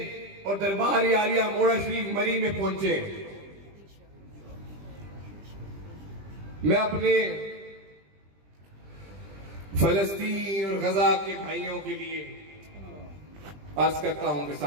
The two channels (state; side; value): late; left; 20 ms